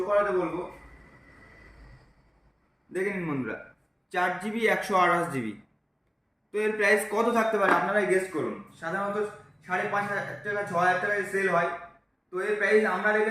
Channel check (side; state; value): both; identical; correlation 1.00